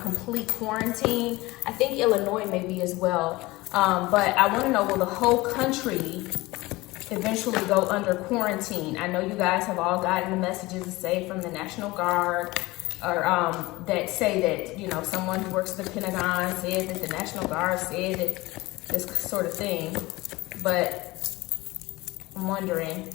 quarantine. I think Illinois may be as well. But I want to know, will the whole country eventually go under quarantine? I know you guys have all gotten the messages, say, from the National Guard, or that say that, you know, someone who works at the Pentagon said that the National Guard said that this sort of thing. But I'm wondering,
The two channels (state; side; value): quieter; right; 20.7 dB